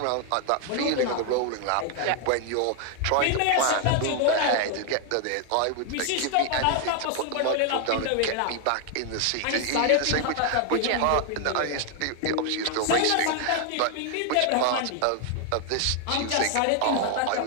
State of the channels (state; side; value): different; both; correlation 0.00